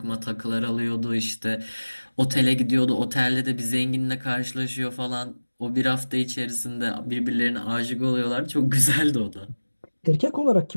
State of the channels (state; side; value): inverted; both; correlation -1.00